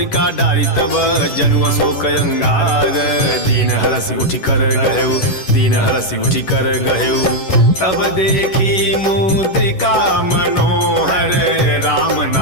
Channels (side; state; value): right; late; 11 ms